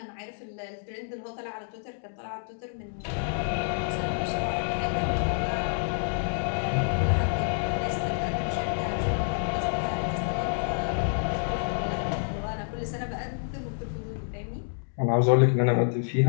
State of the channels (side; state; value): right; silent; digital silence